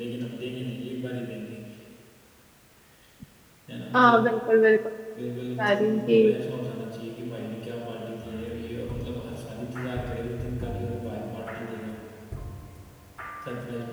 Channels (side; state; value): both; identical; correlation 1.00